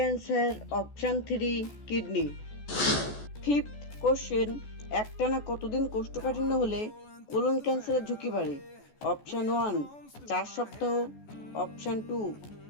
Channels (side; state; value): right; late; 14 ms